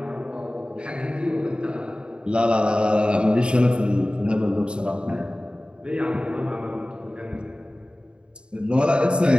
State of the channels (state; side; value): late; left; 0.052 ms